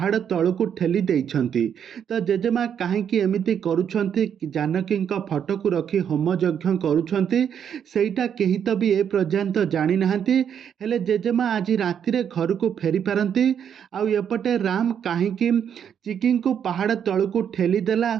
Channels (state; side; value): quieter; left; 8.4 dB